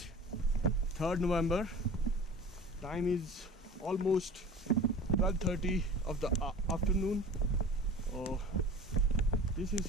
3rd November. Time is almost 12:30 of the afternoon. Oh, this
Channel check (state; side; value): normal; both; correlation 0.40